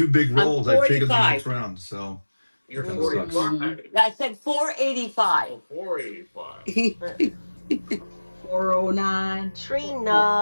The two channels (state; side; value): inverted; both; correlation -1.00